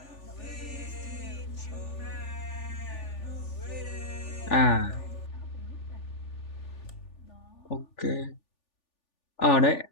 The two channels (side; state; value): right; late; 3.4 ms